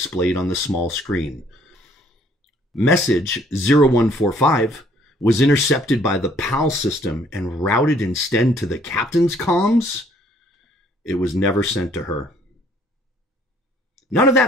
on the small screen. Message 0145 was intercepted by the PAL system and routed instead to the captain's comms. It was never sent to her. "None of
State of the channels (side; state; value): both; normal; correlation 0.61